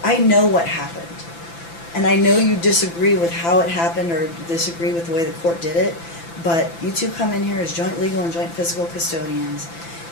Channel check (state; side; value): late; right; 5.9 ms